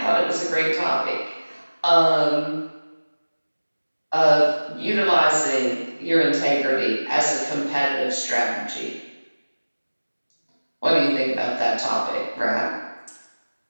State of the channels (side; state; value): both; inverted; correlation -1.00